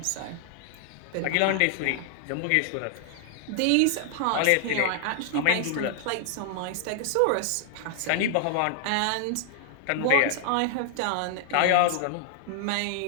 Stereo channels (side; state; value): both; different; correlation -0.01